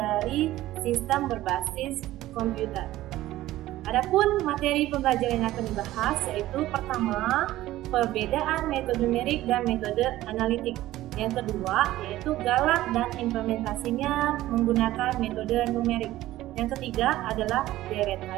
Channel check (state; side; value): quieter; left; 15.5 dB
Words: sistem berbasis komputer. Adapun materi pembelajaran yang akan dibahas yaitu pertama, perbedaan metode numerik dan metode analitik. Yang kedua, yaitu galak dan implementasinya menggunakan metode numerik. Yang ketiga adalah